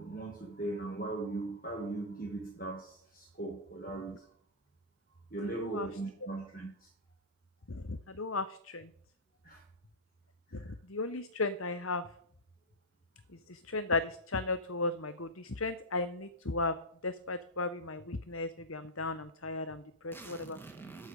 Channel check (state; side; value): normal; both; correlation -0.13